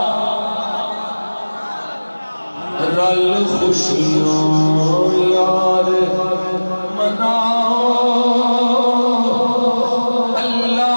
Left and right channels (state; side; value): inverted; both; correlation -1.00